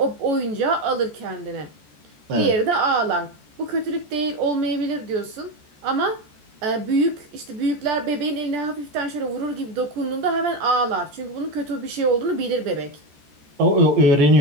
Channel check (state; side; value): late; left; 14 ms